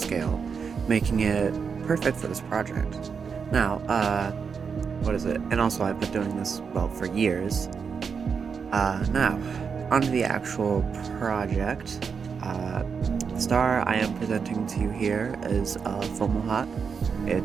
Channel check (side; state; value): left; quieter; 6.0 dB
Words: making it perfect for this project. Now, what is it? And also I've been doing this, well, for years. Now, onto the actual project. The star I am presenting to you here is Fomalhaut.